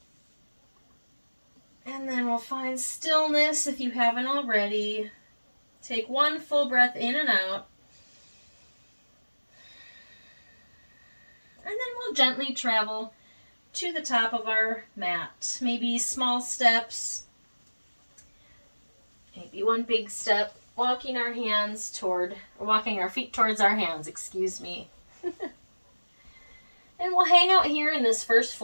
And then we'll find stillness if you haven't already. Take one full breath in and out. And then we'll gently travel to the top of our mat. Maybe small steps, maybe one big step, walking our feet towards our hands, excuse me. And we'll hang out here in this first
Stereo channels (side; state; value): both; inverted; correlation -1.00